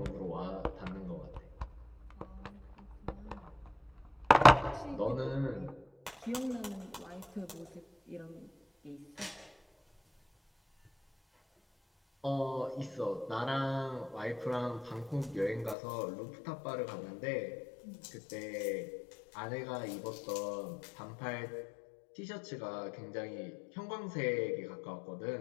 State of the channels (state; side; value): drops out; right; at 15.8 s